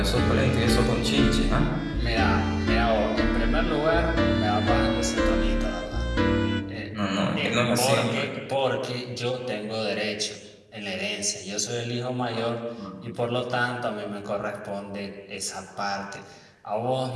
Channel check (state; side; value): identical; both; correlation 1.00